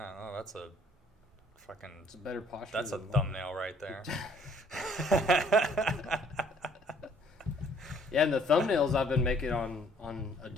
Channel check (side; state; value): both; normal; correlation 0.60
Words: Oh, that's a fucking. It's a better posture. That's a thumbnail right there. Yeah, and the thumbnails I've been making on